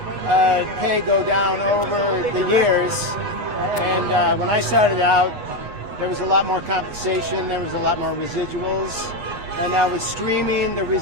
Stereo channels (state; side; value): late; left; 8.2 ms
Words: pay go down over the years. And when I started out, there was a lot more compensation, there was a lot more residuals. And now with streaming, the